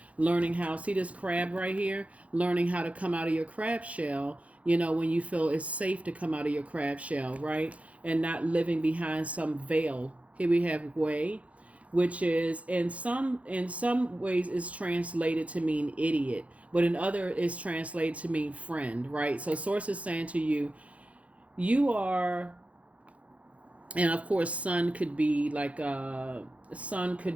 Learning how, see this crab right here? Learning how to come out of your crab shell, when you feel it's safe to come out of your crab shell, right? And not living behind some veil. Here we have Way, which is in some ways is translated to mean idiot, but in other is translated to mean friend, right? So source is saying to you, you are, and of course sun could be like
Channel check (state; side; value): late; left; 0.065 ms